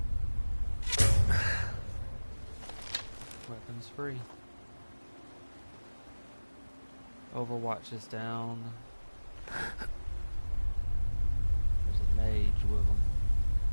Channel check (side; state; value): both; inverted; correlation -1.00